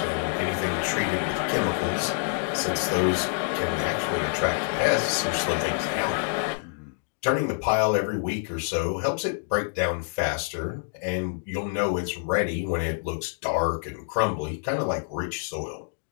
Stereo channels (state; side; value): silent; right; digital silence